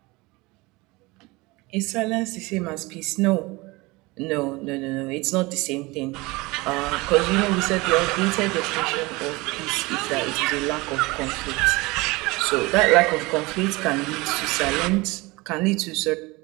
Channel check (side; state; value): left; quieter; 23.3 dB